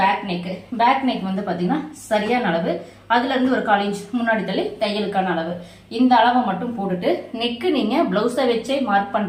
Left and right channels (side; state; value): both; identical; correlation 1.00